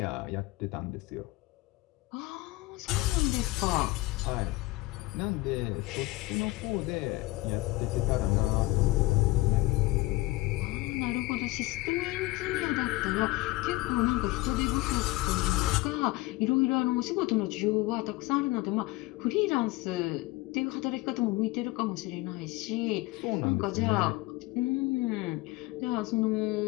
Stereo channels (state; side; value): quieter; right; 20.2 dB